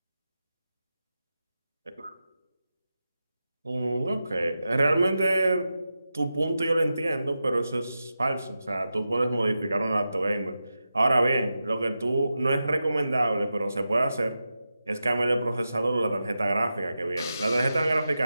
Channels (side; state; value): both; inverted; correlation -0.91